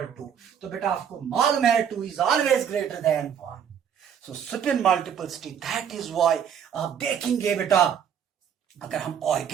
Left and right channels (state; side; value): quieter; left; 8.2 dB